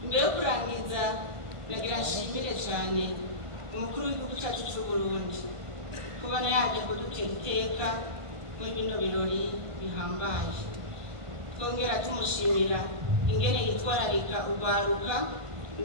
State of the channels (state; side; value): late; left; 1.5 ms